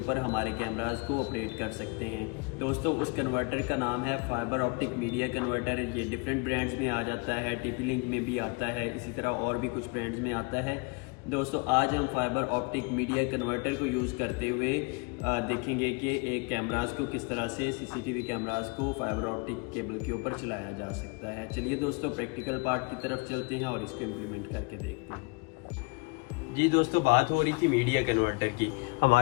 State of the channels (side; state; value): right; quieter; 30.3 dB